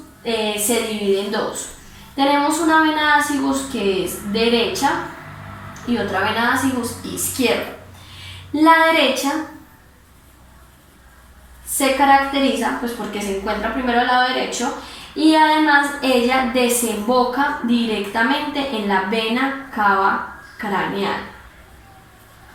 se divide en dos. Tenemos una vena ácigus que es derecha y otra vena ácigus izquierda. La derecha se caracteriza pues porque se encuentra primero al lado derecho y además ella desemboca directamente en la vena cava craneal,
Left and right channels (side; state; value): both; identical; correlation 1.00